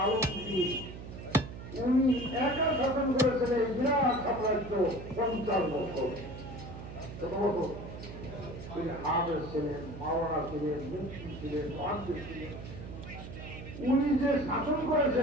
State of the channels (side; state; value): right; noise; hum, 11 dB below the sound